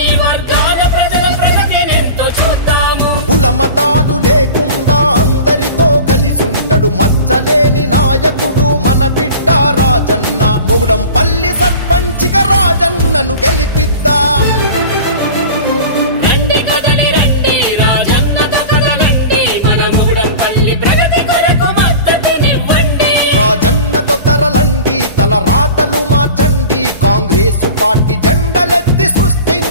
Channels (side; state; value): both; inverted; correlation -0.36